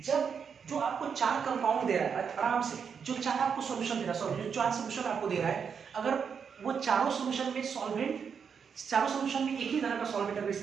जब जो आपको 4 कंपाउंड दे रहा है आराम से, जो 4 आपको सॉल्यूशन दे रहा है, जो 4 सॉल्यूशन आपको दे रहा है, अगर वो चारों सॉल्यूशन में सॉल्वेंट, चारों सॉल्यूशन में एक ही तरह का सॉल्वेंट अगर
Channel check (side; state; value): left; quieter; 6.6 dB